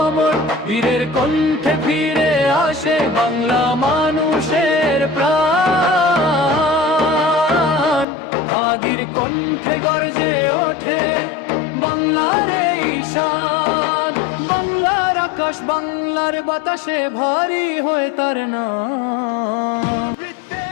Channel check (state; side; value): drops out; right; at 8.1 s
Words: অমর, বীরের কণ্ঠে ফিরে আসে বাংলা মানুষের প্রাণ। হাদির কণ্ঠে গর্জে ওঠে বাংলার এই শান। বাংলার আকাশ, বাংলার বাতাসে ভারী হয়ে তার নাম।